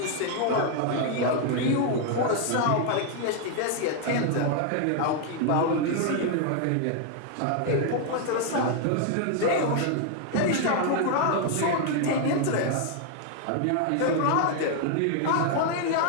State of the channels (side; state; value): both; different; correlation 0.00